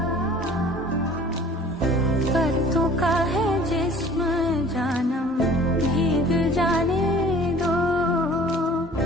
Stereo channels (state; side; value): normal; both; correlation 0.49